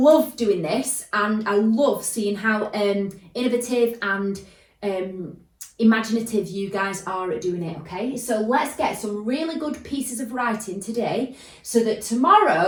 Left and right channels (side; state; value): both; identical; correlation 1.00